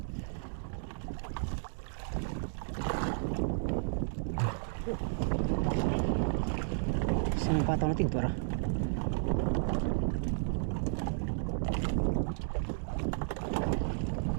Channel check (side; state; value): left; silent; digital silence